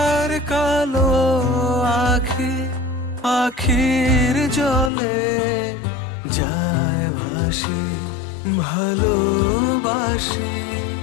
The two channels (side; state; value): right; drops out; at 4.9 s